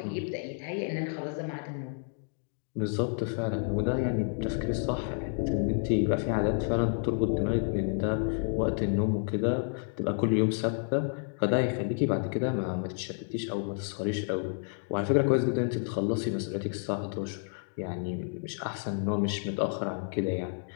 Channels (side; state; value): right; silent; 58 dB below the other